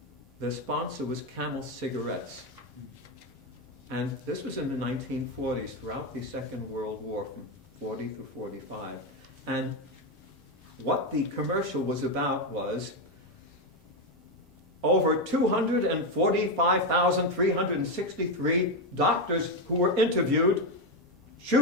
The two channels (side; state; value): both; normal; correlation 0.09